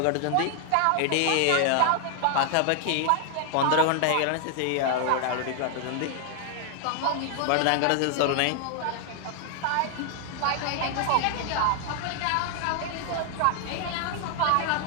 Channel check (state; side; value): different; both; correlation 0.00